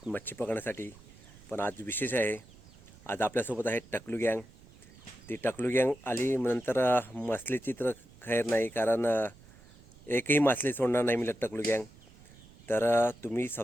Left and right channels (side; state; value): right; noise; rumble, 23 dB below the sound